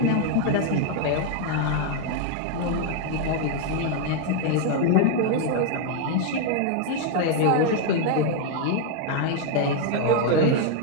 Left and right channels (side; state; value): both; different; correlation 0.00